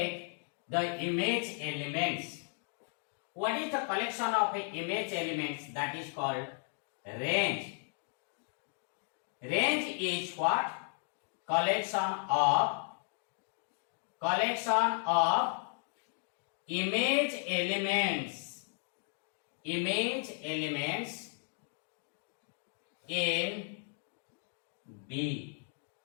the image elements. What is the collection of image elements? That is called range. Range is what? Collection of collection of image elements in B.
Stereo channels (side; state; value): right; silent; 54 dB below the other